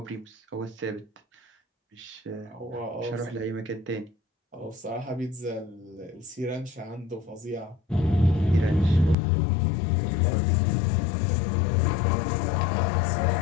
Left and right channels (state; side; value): drops out; right; at 9.2 s